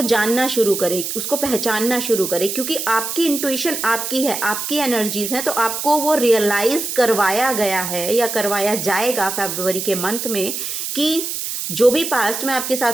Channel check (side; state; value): right; noise; hiss, 4 dB below the sound